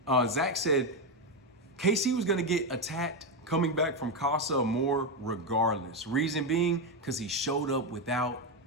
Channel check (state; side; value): normal; both; correlation 0.08